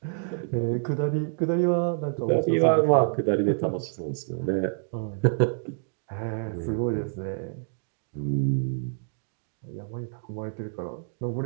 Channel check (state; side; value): silent; left; digital silence